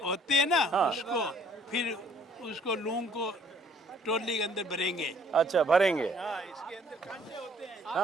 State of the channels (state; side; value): normal; both; correlation 0.60